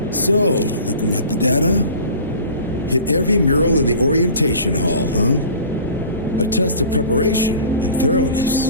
So, looking at the data, hit every mural in the orientation hall, huh? A test of preparation and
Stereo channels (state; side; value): inverted; both; correlation -0.41